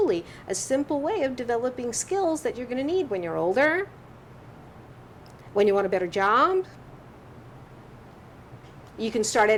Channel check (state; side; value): identical; both; correlation 1.00